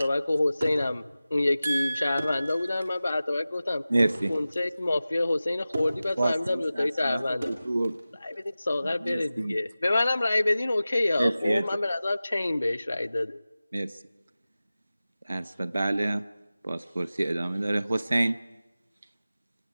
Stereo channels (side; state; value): both; inverted; correlation -0.96